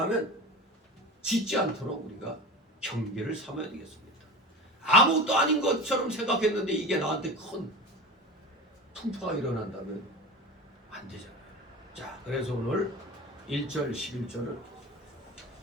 짓지 않도록 우리가 경계를 삼아야 되겠습니다. 아무것도 아닌 것처럼 생각했는데 이게 나한테 큰 풍파가 일어난다면 안 되잖아요. 자, 그래서 오늘 1절 11절은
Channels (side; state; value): both; normal; correlation 0.31